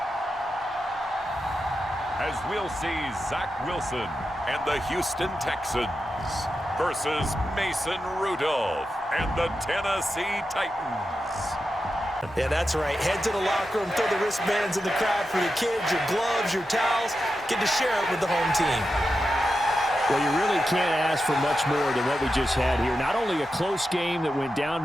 As we'll see Zach Wilson and the Houston Texans versus Mason Rudolph and the Tennessee Titans. Yeah, that's right. Head to the locker room, throw the wristbands in the crowd for your kids, your gloves, your towels. Get to share it with the home team. Well, you really can't ask for much more than what we just had here. Not only a close game that went down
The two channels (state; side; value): normal; both; correlation 0.89